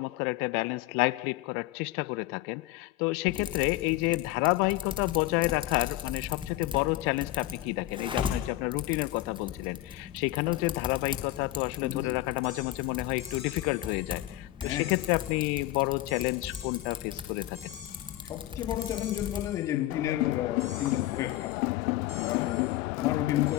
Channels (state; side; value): quieter; right; 16.2 dB